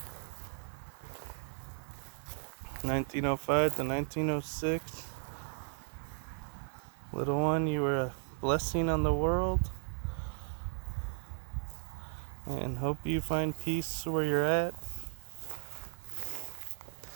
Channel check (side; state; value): left; silent; digital silence